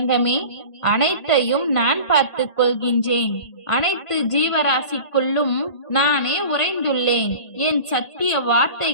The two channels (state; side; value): late; right; 1.8 ms